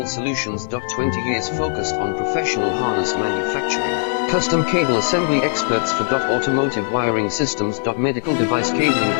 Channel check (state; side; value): silent; right; 56 dB below the other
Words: solutions. 20 years focused on professional harness manufacturing. Custom cable assembly experts for automotive wiring systems. Medical device cabling.